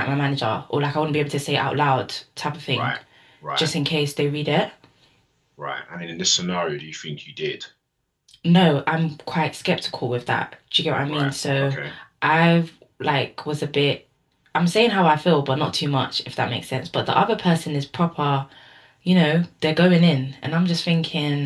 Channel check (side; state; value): both; identical; correlation 1.00